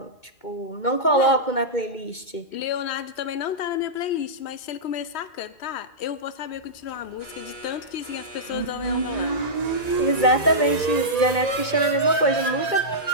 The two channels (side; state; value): right; late; 1.9 ms